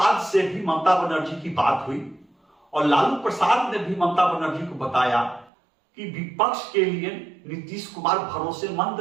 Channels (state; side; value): drops out; left; at 5.5 s